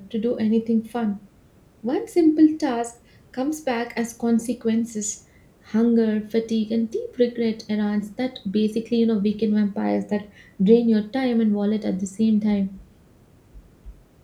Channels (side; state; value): both; identical; correlation 1.00